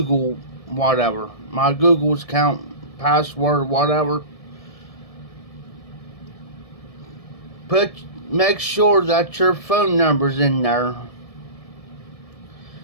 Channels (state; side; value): late; right; 1.7 ms